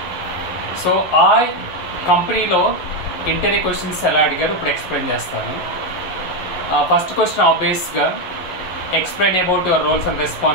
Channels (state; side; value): late; right; 11 ms